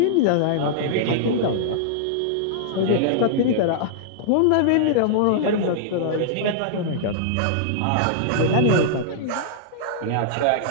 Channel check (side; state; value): both; different; correlation -0.02